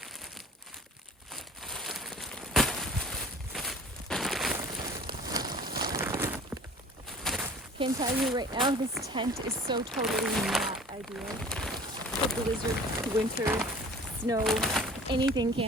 Can tell you right now, this tent is so totally not ideal for blizzard, winter, snow, anything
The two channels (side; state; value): both; normal; correlation 0.45